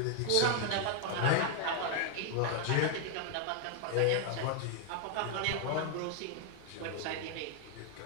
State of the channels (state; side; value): different; both; correlation 0.00